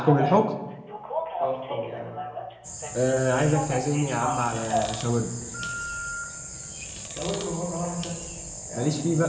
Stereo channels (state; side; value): identical; both; correlation 1.00